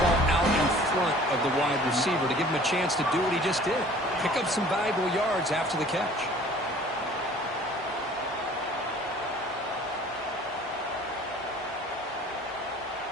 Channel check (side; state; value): both; normal; correlation 0.50